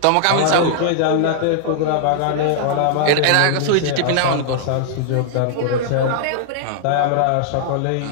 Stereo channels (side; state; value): both; different; correlation -0.01